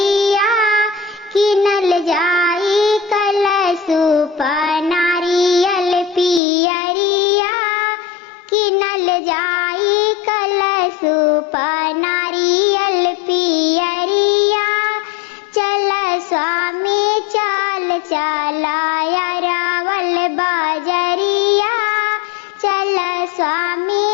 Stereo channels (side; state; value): right; drops out; at 6.4 s